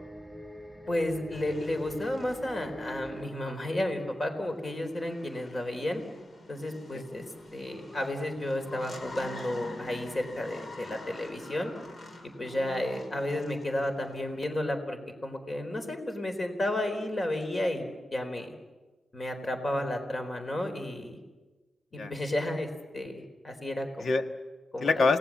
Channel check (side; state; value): both; normal; correlation 0.90